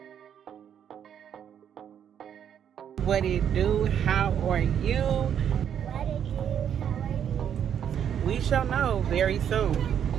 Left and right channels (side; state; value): left; quieter; 8.9 dB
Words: What it do? How are you? What it do? How are you? We shall know very soon.